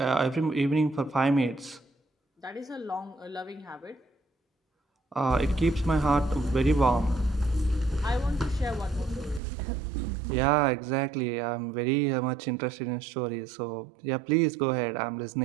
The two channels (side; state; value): left; drops out; at 9.4 s